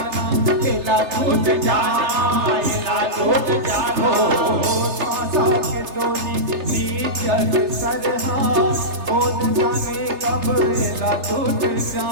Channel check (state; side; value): late; left; 3.3 ms